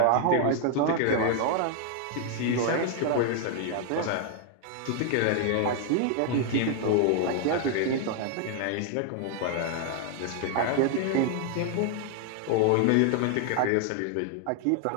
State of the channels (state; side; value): different; both; correlation 0.00